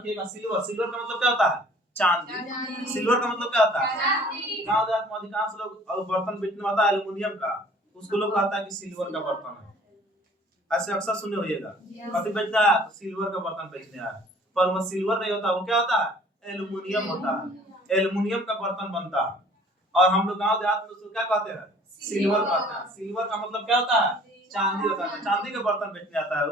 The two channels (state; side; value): normal; both; correlation 0.52